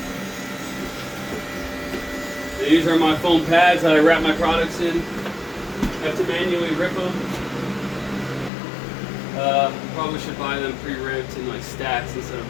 These are my foam pads that I wrap my products in. I have to manually rip them. Probably should buy them pre-ripped in like stacks instead of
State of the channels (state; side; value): drops out; right; at 8.5 s